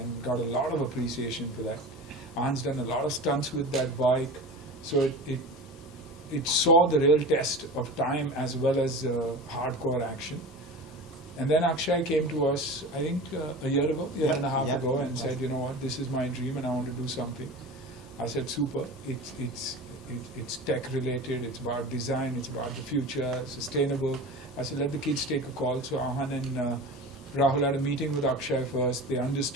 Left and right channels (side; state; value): both; normal; correlation 0.32